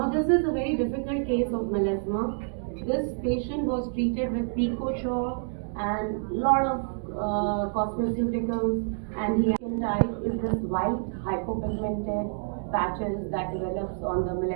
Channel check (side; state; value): left; silent; digital silence